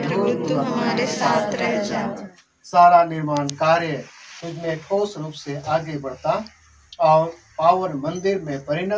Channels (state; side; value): identical; both; correlation 1.00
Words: तू हमारे साथ रह जा। सारा निर्माण कार्य तुझमें ठोस रूप से आगे बढ़ता और पावन मंदिर में